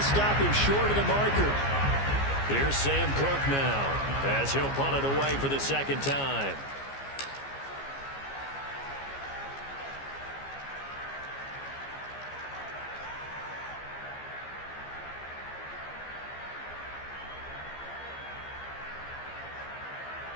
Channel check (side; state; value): right; late; 15 ms